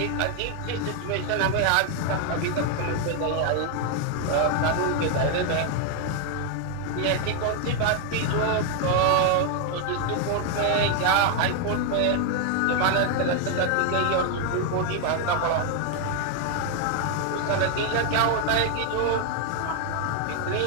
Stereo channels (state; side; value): different; both; correlation 0.01